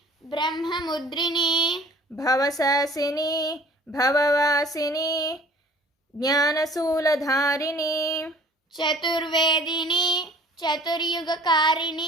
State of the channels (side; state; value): both; normal; correlation 0.51